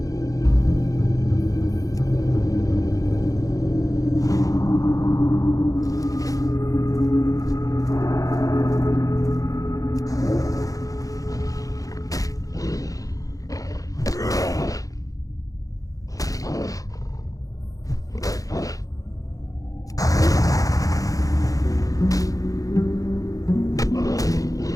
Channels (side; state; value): right; late; 0.17 ms